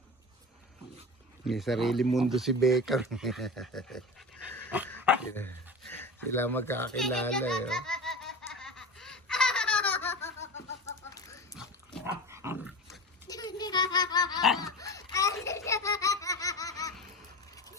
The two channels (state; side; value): normal; both; correlation 0.30